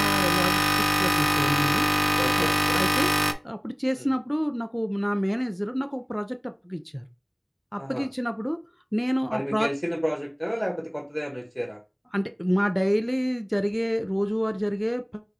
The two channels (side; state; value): both; identical; correlation 1.00